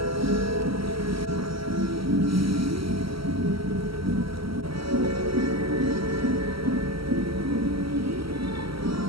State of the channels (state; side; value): late; left; 0.75 ms